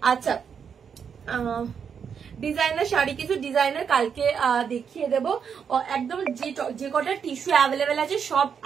আচ্ছা, ডিজাইনার শাড়ি কিছু ডিজাইনার কালকে দেখিয়ে দেবো। একদম যে কটা টিস্যু অ্যাভেলেবেল আছে সব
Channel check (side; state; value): left; quieter; 7.0 dB